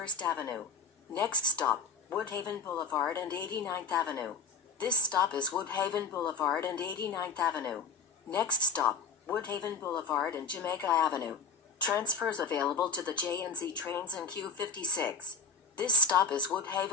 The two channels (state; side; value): quieter; right; 5.1 dB